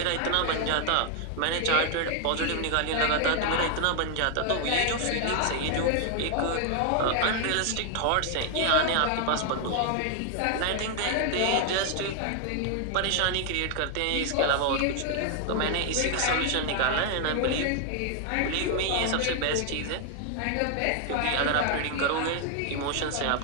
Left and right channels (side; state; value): both; different; correlation 0.00